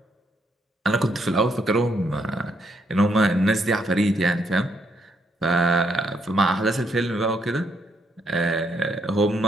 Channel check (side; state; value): both; normal; correlation 0.74